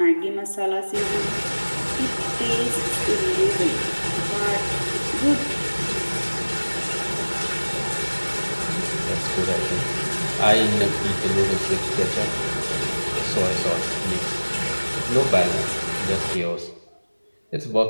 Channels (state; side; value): inverted; both; correlation -1.00